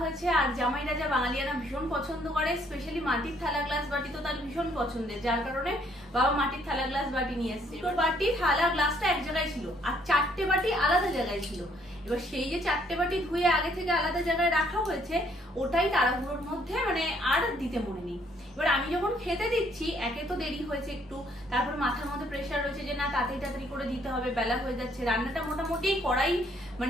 হয়েছে, আর জামাই রাজা বাঙালিয়ানা ভীষণ পছন্দ করে, স্পেশালি মাটির থালা গ্লাস বাটি তো তার ভীষণ পছন্দের, যার কারণে বাবা মাটির থালা গ্লাস বাটি নিয়ে এসছে। বাটি থালা গ্লাসটা এক জায়গায় ছিল, আর 4টে বাটি আলাদা জায়গায় ছিল। এবার সেই যে 4টে বাটি ধুয়ে আগে থেকে আলাদা জায়গায় রাখা হয়েছে, ওটাই তাড়াহুড়োর মধ্যে মানে আর দিতে মনে নেই। এবার আমি যখন খেতে দিচ্ছি, একে তো দেরি হয়েছে একটু, তারপর মাথার মধ্যে প্রেশার রয়েছে যে না তাড়াতাড়ি করে দিতে হবে, বেলা হয়ে যাচ্ছে। রান্নাটা মোটামুটি কড়াই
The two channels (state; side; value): normal; both; correlation 0.66